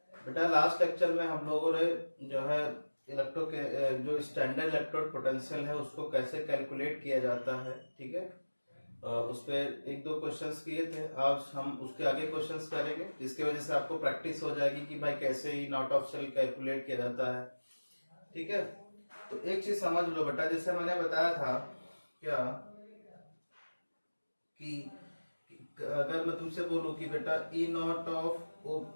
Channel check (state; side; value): inverted; both; correlation -1.00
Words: बेटा last lecture में हम लोगों ने जो है इलेक्ट्रो के जो स्टैंडर्ड इलेक्ट्रोड पोटेंशियल है उसको कैसे कैलकुलेट किया जाता है, ठीक है। उस पर एक दो क्वेश्चंस किए थे। आज हम उसके आगे क्वेश्चंस करेंगे जिसकी वजह से आपको प्रैक्टिस हो जाएगी कि भाई कैसे ही नॉट ऑफ सेल कैलकुलेट किया जाता है, ठीक है। तो एक चीज समझ लो बेटा, जैसे मैंने बताया था क्या कि अगर मैं तुमसे बोलूं कि बेटा ई नॉट ऑफ